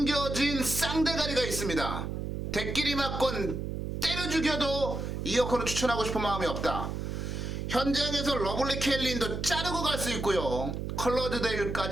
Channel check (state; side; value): noise; right; hum, 4 dB below the sound